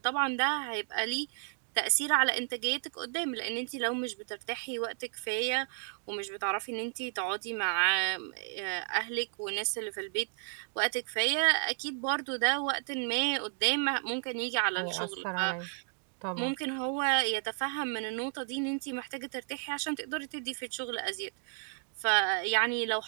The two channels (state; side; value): silent; left; 56 dB below the other